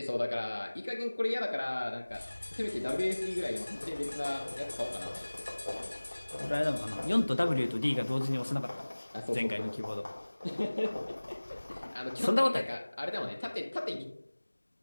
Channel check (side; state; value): both; inverted; correlation -1.00